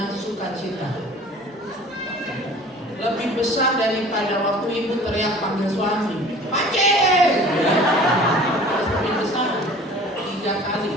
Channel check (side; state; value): both; normal; correlation 0.46